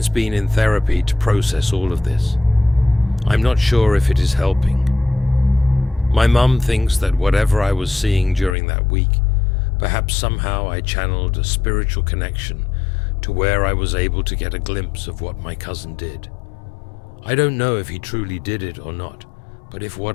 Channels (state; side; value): drops out; right; at 8.6 s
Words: been in therapy to process all of this. I'm not sure if it is helping. My mum thinks that whatever I was seeing during that week, perhaps somehow I channeled a spiritual connection to where I was able to get a glimpse of what my cousin did. I don't know if he truly did it or not, but if